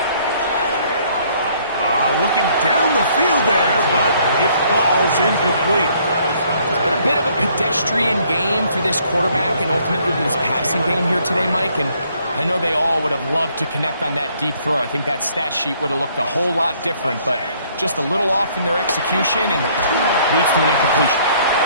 Looking down the field there, but it falls incomplete. It's been a bit of a pedestrian game for this quarterback and ultimately this passing game here today, Mike, and I know they all would have loved to connect on that deep throw. I think that stat sheet would have looked a whole lot different, but just a little off in their execution and leads to an incompletion.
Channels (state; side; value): inverted; both; correlation -0.64